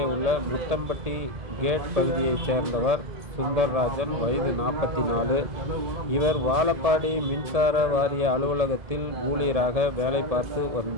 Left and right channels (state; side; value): late; left; 1.8 ms